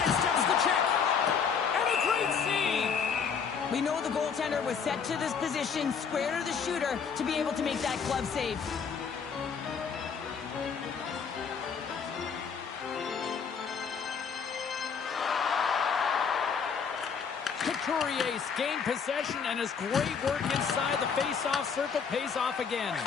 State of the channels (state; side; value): quieter; right; 6.3 dB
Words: the check. And a great save. We know the goaltender was set to this position, square to the shooter, to be able to make that glove save. Couturier's gained possession, and his great work inside the face-off circle pays off again.